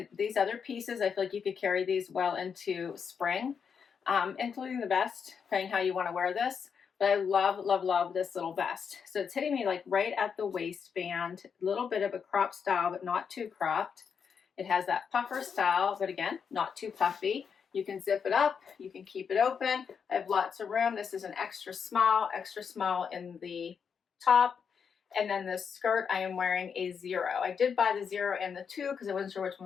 these other pieces, I feel like you could carry these well into spring, including the vest, depending how you want to wear this. But I love, love, love this little vest. So it's hitting me like right at the waistband, a little bit of a crop style, but not too cropped. It has that puffer style, but again, not too puffy. You can zip it up, you can keep it open. I have lots of room. This is an extra small in the top. And then this skirt, I am wearing a 0. I did buy the 0 and the 2 because I wasn't sure which one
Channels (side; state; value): right; quieter; 6.6 dB